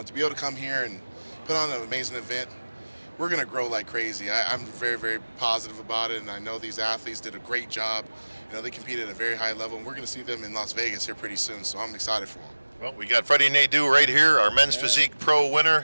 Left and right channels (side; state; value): both; inverted; correlation -1.00